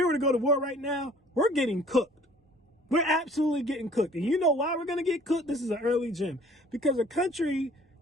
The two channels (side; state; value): both; normal; correlation 0.53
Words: were to go to war right now, we're getting cooked. We're absolutely getting cooked. And you know why we're going to get cooked? This is an early gem. Because a country